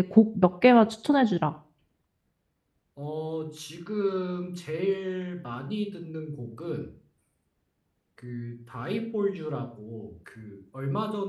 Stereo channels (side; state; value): both; identical; correlation 1.00